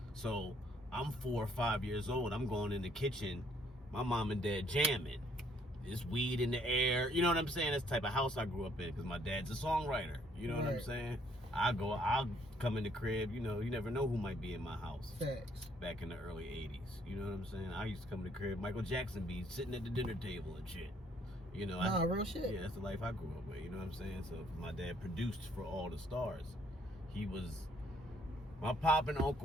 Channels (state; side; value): normal; both; correlation 0.66